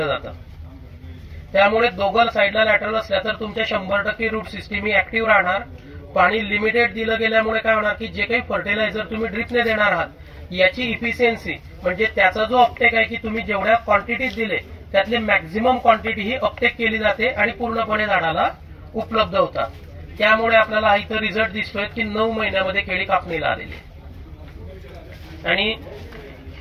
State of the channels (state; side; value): identical; both; correlation 1.00